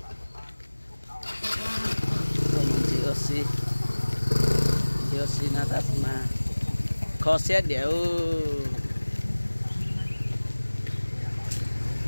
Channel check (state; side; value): inverted; both; correlation -1.00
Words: mình chỉ ở xí nó ta mà khó xét đều